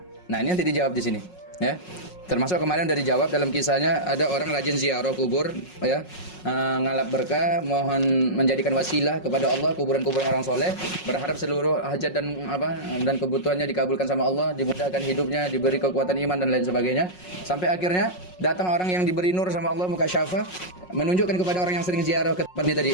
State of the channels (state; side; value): late; right; 5.5 ms